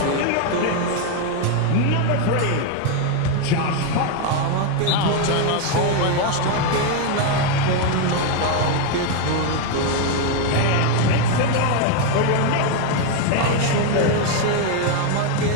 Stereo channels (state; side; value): different; both; correlation 0.01